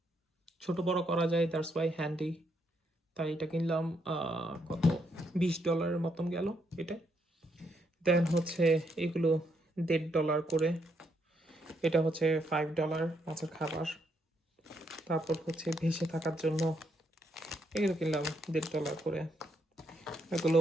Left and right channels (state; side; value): normal; both; correlation 0.76